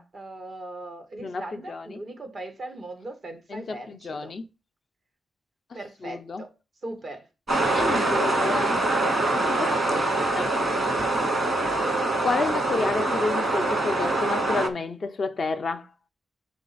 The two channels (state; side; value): normal; both; correlation 0.76